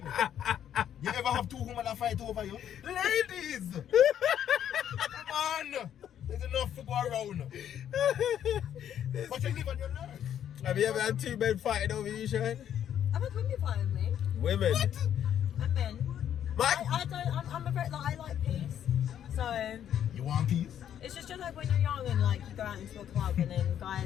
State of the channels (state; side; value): quieter; right; 9.9 dB